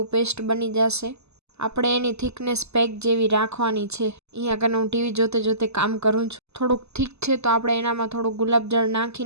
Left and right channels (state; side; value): late; left; 0.80 ms